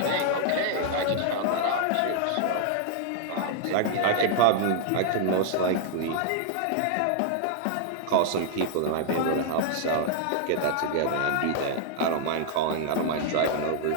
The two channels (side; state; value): both; different; correlation -0.01